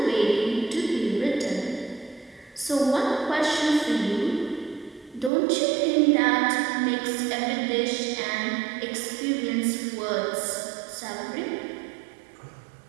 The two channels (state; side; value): drops out; left; at 5.3 s